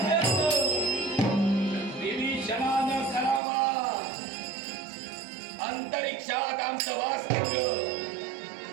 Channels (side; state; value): left; drops out; at 3.4 s